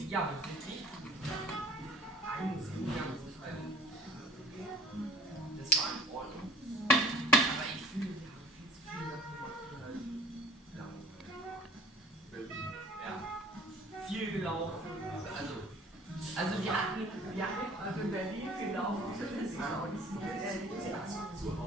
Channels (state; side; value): normal; both; correlation 0.50